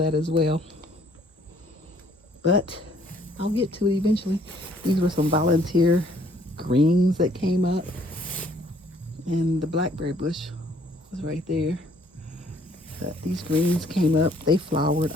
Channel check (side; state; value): both; normal; correlation 0.62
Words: as well. But I'll get to it eventually. These were some volunteer greens that came up. And the blackberry bush was right there. But these greens came up. They flowered.